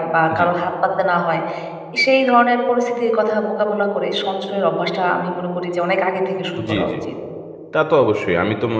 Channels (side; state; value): both; identical; correlation 1.00